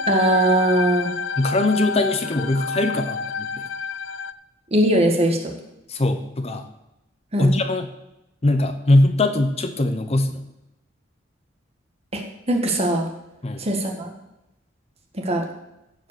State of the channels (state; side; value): normal; both; correlation 0.57